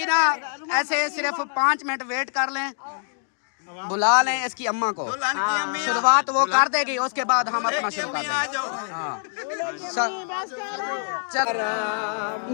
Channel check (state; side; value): silent; right; digital silence